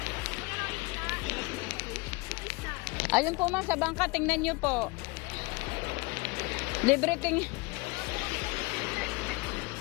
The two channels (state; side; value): quieter; right; 25.4 dB